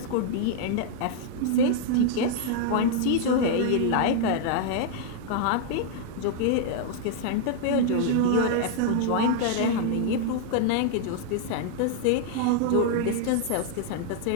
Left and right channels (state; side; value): different; both; correlation 0.00